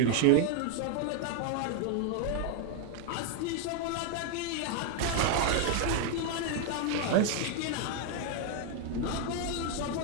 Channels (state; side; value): different; both; correlation 0.00